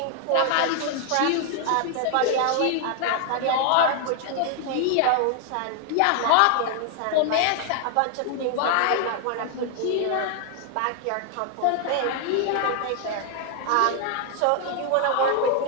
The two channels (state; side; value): different; both; correlation 0.00